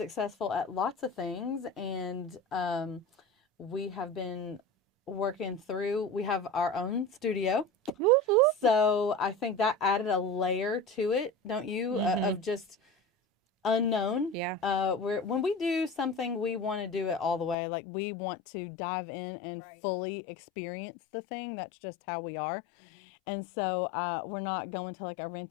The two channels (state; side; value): drops out; right; at 17.6 s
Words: at lots of things, and we have been working through. We have our own studio, so I think that added a layer to it, don't you? Of just unknown. Yeah. When we do something, we want to do it all the way. Like we want to dive in and Right. fully experience the thing. That's just how we are. And so we're not going to like a